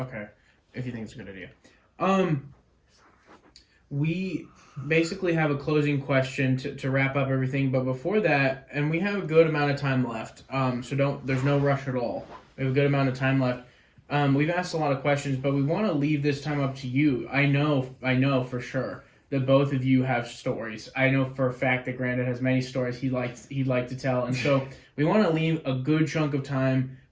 if you think it's a good idea. We basically have a closing question to wrap up everything, but before that, and we have a good amount of time left, so there's no rush at all. We have a good amount of time left. We've asked a lot of questions, but we want to leave this time up to you. I know for sure that both of you have stories. I know for a fact that Granda has many stories he'd like to tell, and so we want to leave a good chunk of time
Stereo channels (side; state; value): both; identical; correlation 1.00